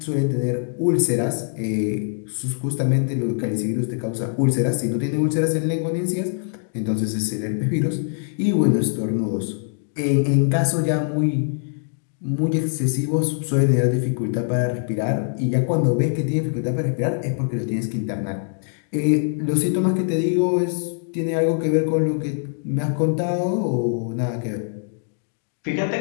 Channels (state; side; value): silent; right; digital silence